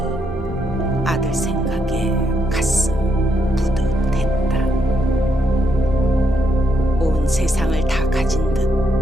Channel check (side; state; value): both; normal; correlation 0.78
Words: 아들 생각에 가슴 뿌듯했다. 온 세상을 다 가진 듯